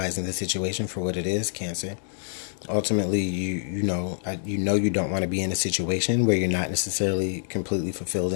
the situation for what it is, Cancer. Ultimately, you know you don't want to be in a situation where you're not necessarily completely fulfilled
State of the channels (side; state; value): right; silent; digital silence